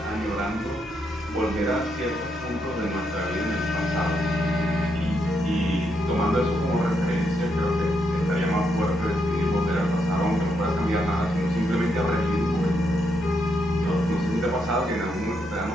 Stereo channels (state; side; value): normal; both; correlation 0.79